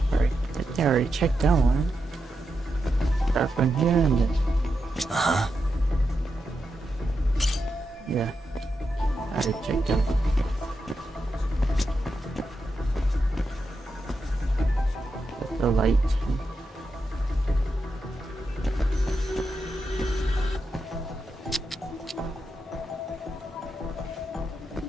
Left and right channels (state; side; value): normal; both; correlation 0.86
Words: Alright, I already checked that one. Start from here and then. Yeah. I already checked that one. That's the light.